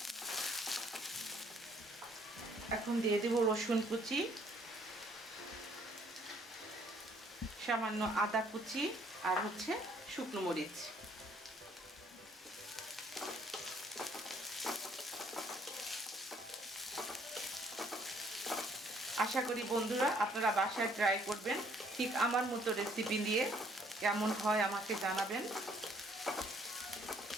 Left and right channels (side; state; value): both; normal; correlation 0.63